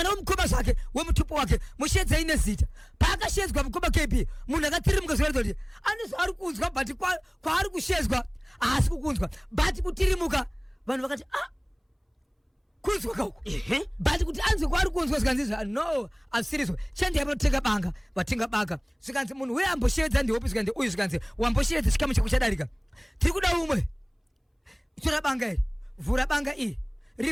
wemukoma zvake wemutupo wake mushedzei nezita paakashedzwa mukoma KP munhu akatirimuka zvoratidza kuti ane zvaari kunzwa but kwaari kushedzwa haasi kukunzwa but kutirimuka vanhu vakati kunzwa kauko but kuti anzwe kwaari kunzwa zvikanzi no asirizwa chandiyai panotenga banga vatenga banga zvikanzi munhu uye amboshevedza ndihopi zvikanzi uyu zvikanzi wamboshevedza chikamu chako chadarika tiri kuda umwe tora banga iri vhura banga iyi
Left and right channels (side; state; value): both; identical; correlation 1.00